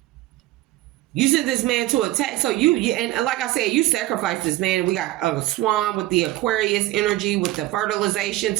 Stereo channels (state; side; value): quieter; left; 16.7 dB